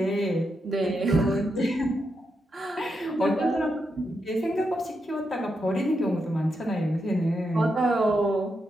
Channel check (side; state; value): both; normal; correlation 0.84